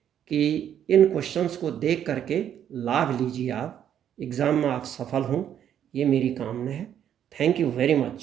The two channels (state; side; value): quieter; left; 9.7 dB